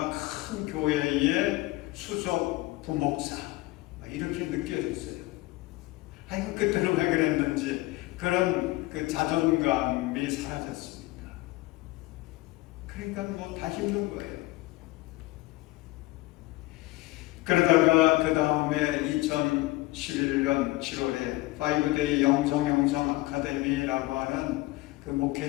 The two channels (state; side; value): quieter; right; 19.9 dB